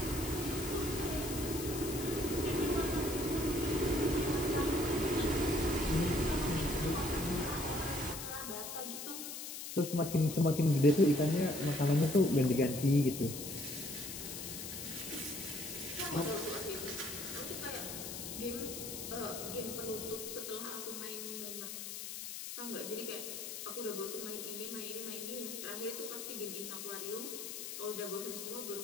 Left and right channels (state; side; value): noise; left; hiss, 7 dB below the sound